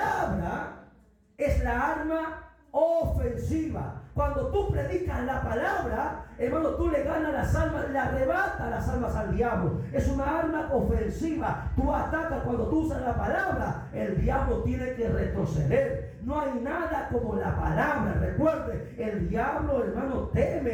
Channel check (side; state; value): both; identical; correlation 1.00